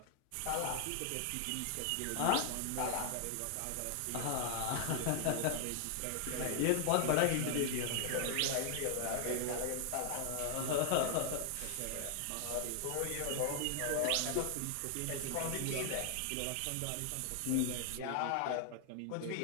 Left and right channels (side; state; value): both; different; correlation 0.00